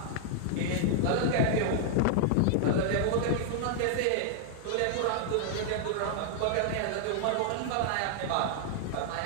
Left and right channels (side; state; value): both; different; correlation 0.00